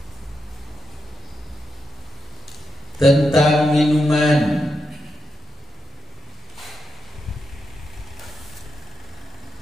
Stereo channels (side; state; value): both; normal; correlation 0.86